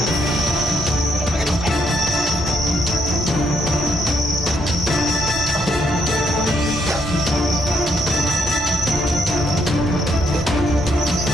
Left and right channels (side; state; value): both; normal; correlation 0.73